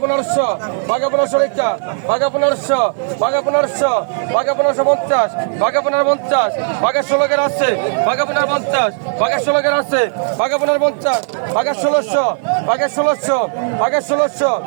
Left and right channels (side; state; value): left; silent; 60 dB below the other